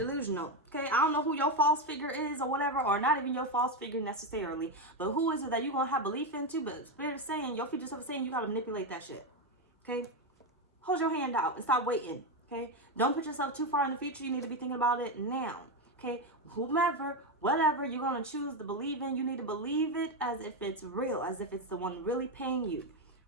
Okay? I don't know who your false figure is or whatever. Or not even your false figure necessarily. But who is it that you're going to have belief into? But Spirit is saying, your future self is saying you got to manipulate that shit. Okay? Hold your hand out and stop waiting. Okay? Don't put yourself too far in the future. You need to be thinking about it now. Okay? Whomever, whatever you're going to choose to believe in, you need to believe it as if it's real, as if it's the one really paying you,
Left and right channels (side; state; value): both; normal; correlation 0.10